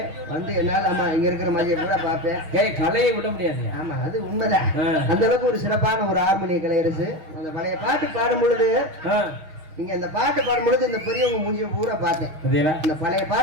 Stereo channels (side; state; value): left; late; 6.4 ms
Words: வந்து என்னால ஆமா இங்க இருக்கிற மாதிரியே கூட பார்ப்பேன். கலையை விட முடியாது. ஆமா அது உண்மைதான். அந்த அளவுக்கு ஒரு சிறப்பான ஒரு ஆர்மணிய கலையரசு. அந்த பழைய பாட்டு பாடும் பொழுது நீங்க இந்த பாட்டு பாடும் பொழுது இந்த பெரியவங்க மூஞ்சிய பூரா பார்த்தேன். இந்த பழைய